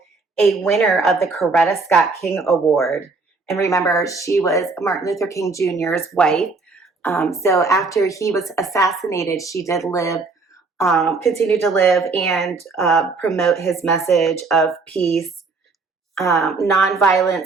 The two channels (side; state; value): left; quieter; 4.0 dB